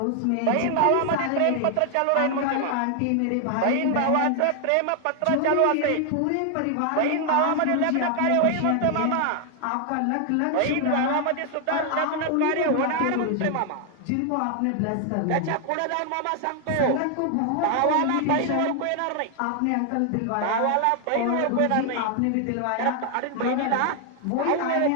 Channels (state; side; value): different; both; correlation 0.00